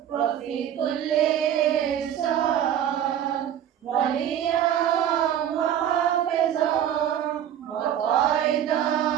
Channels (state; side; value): quieter; left; 10.3 dB